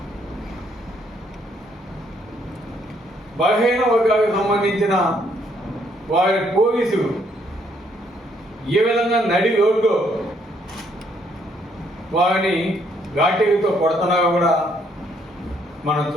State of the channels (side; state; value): both; normal; correlation 0.69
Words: బలహీన వర్గాలకు సంబంధించిన వారి పోలీసులు ఏ విధంగా నడి రోడ్డు వారిని ఘాటీలతో కొడుతున్నారో కూడా మనం